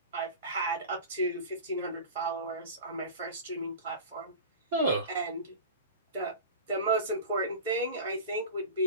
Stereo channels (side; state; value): both; inverted; correlation -0.32